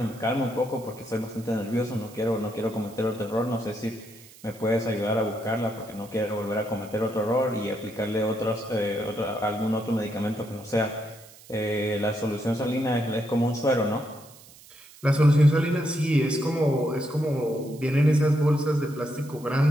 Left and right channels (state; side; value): noise; right; hiss, 22 dB below the sound